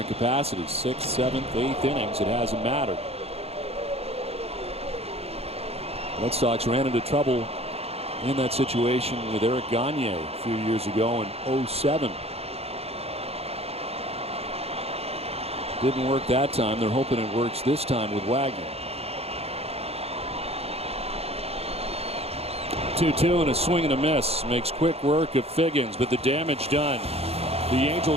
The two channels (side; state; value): left; late; 0.29 ms